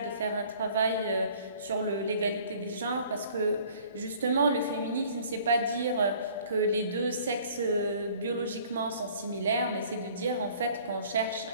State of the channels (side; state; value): both; inverted; correlation -0.53